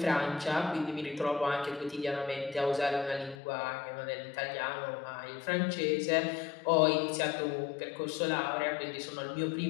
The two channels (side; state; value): right; drops out; at 3.4 s